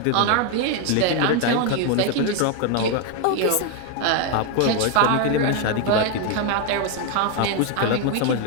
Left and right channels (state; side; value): different; both; correlation 0.01